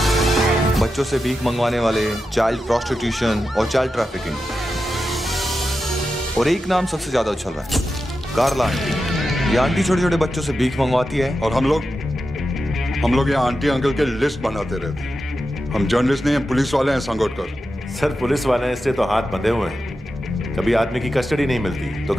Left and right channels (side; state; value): both; normal; correlation 0.90